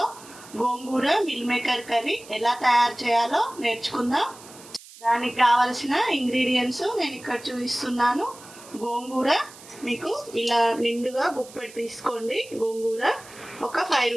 గోంగూర మిల్ మేకర్ కర్రీ ఎలా తయారు చేయాలో నేర్చుకుందాం. దానికి కావలసిన ఇంగ్రీడియంట్స్ నేను ఇక్కడ చూపిస్తున్నాను. గోంగూర మీకు ఇలా నిండుగా గుప్పెడు తీసుకోండి. గోంగూర ఒక 5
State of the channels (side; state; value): right; noise; hiss, 19 dB below the sound